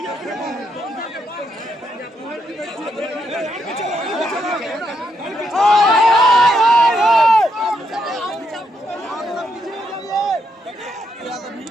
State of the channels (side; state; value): both; normal; correlation 0.78